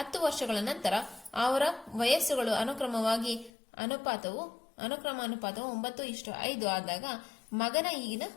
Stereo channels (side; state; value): right; drops out; at 3.5 s